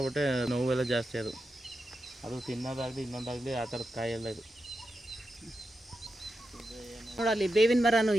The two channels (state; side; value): normal; both; correlation 0.88